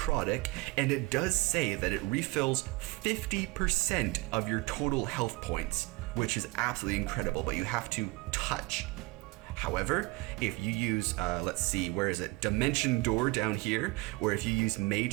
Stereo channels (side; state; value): left; quieter; 23.9 dB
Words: and it does say that it refills 50% of your total health points, which is absolutely incredible, but you have to touch. However, if you use, let's see, where is it? Dimension Door down here, or if you use